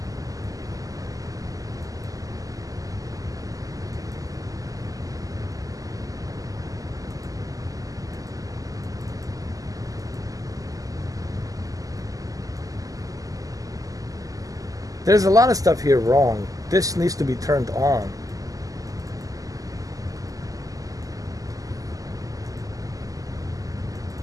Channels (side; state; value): left; late; 0.17 ms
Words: There's a lot of stuff here wrong. This needs to be turned on.